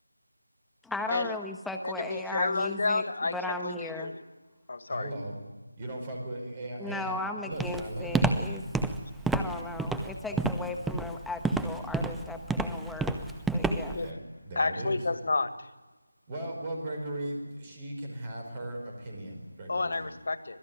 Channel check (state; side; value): inverted; both; correlation -0.33